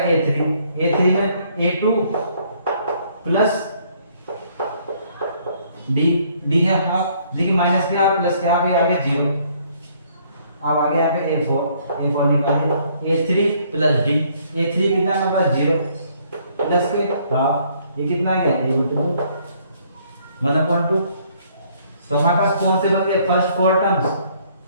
A3 में A2 प्लस D है हाफ, देखिए माइनस के हाफ प्लस के हाफ, ये आ गया 0। अब आगे आ गया A4 निकालिए A3 प्लस D, A3 कितना है हमारे पास? 0 प्लस के हाफ, ये कितना आ गया? 1/2। तो हमारे पास कौन से बन गए? फर्स्ट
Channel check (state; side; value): inverted; both; correlation -0.64